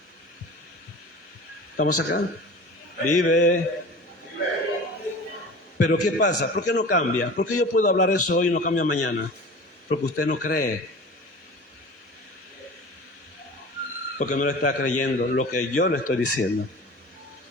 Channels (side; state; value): both; normal; correlation 0.38